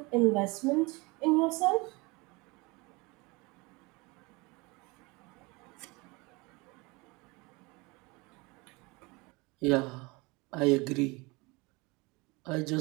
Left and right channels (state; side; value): quieter; left; 25.7 dB